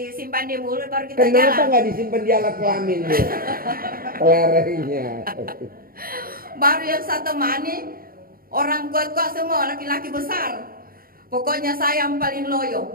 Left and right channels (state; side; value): late; left; 0.42 ms